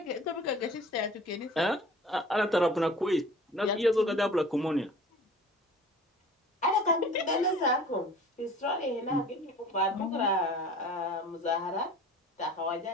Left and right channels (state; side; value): normal; both; correlation 0.45